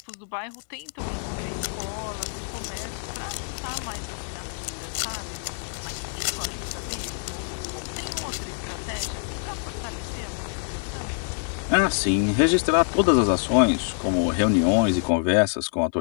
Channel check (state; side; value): silent; right; 60 dB below the other